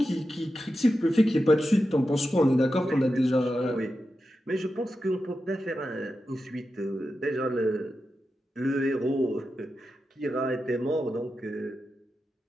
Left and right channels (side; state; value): both; normal; correlation 0.90